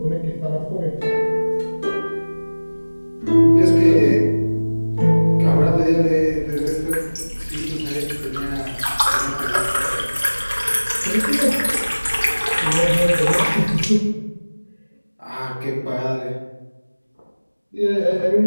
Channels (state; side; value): inverted; both; correlation -1.00